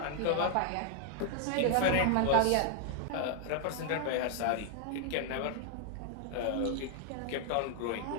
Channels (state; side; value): different; both; correlation 0.00